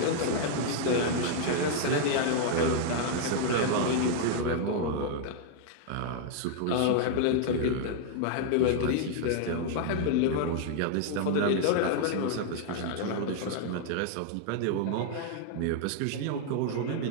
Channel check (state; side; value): different; both; correlation 0.00